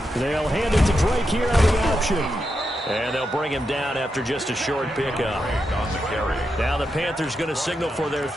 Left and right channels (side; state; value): both; normal; correlation 0.86